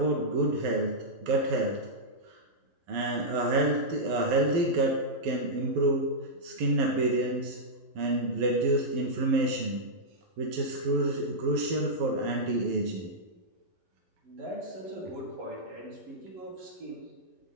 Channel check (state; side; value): late; left; 11 ms